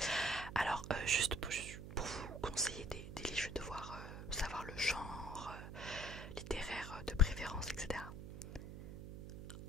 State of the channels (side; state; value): right; noise; hum, 9 dB below the sound